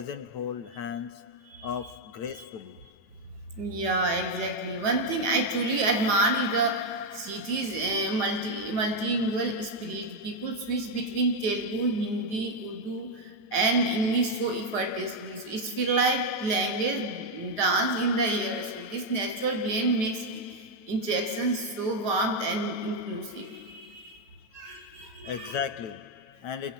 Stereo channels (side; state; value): right; late; 9.1 ms